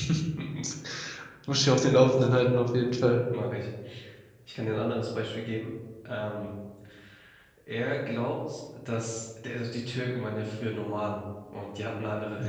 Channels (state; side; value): identical; both; correlation 1.00